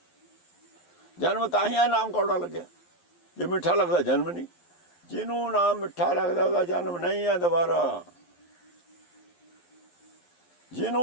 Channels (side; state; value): right; late; 11 ms